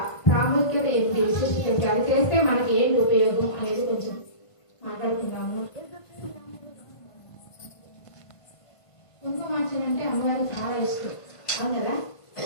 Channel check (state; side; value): late; right; 1.5 ms